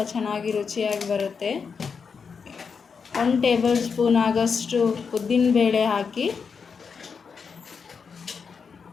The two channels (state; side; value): quieter; right; 5.8 dB